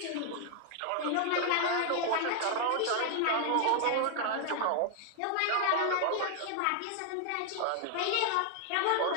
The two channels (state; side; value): different; both; correlation 0.00